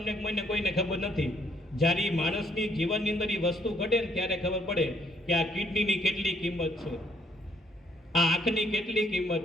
કોઈને ખબર નથી. જ્યારે એ માણસની જીવનની અંદર એ વસ્તુ ઘટે ને ત્યારે ખબર પડે કે આ કિડનીની કેટલી કિંમત છે, આ આંખની કેટલી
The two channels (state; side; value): normal; both; correlation 0.67